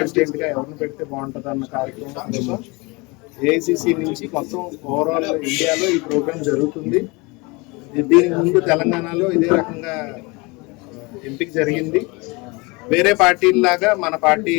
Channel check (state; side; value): quieter; right; 26.5 dB